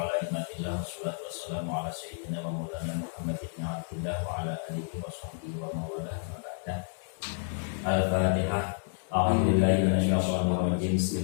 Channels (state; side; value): silent; right; 58 dB below the other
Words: ala imatillah wassalatu wassalamu ala sayyidina wa maulana Muhammad ibn Abdillah wa ala alihi wa sahbihi wa mawalah wa ba'dah. Al-Fatihah. A'udzubillahi minasyaitonir rajim.